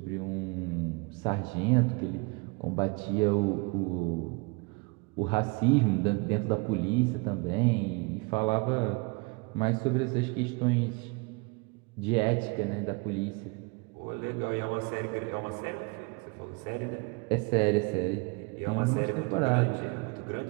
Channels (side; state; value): left; quieter; 29.4 dB